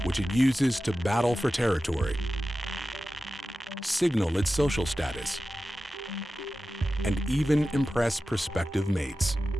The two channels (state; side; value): normal; both; correlation 0.94